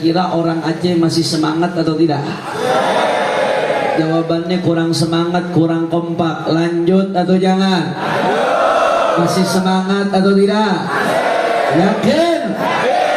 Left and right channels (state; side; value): identical; both; correlation 1.00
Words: orang Aceh masih semangat atau tidak? Jawabannya kurang semangat, kurang kompak. Lanjut atau jangan? Masih semangat atau tidak? Yakin?